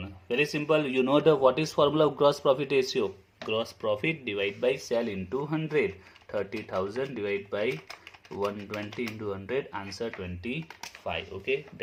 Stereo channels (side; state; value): both; identical; correlation 1.00